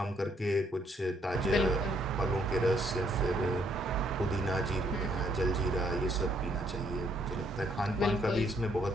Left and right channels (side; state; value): both; normal; correlation 0.70